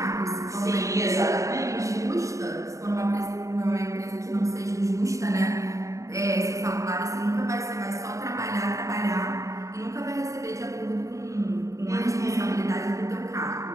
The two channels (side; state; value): left; late; 0.15 ms